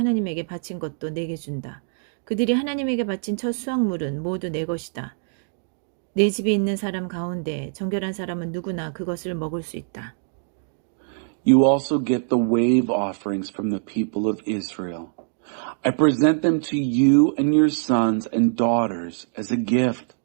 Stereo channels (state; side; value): silent; left; digital silence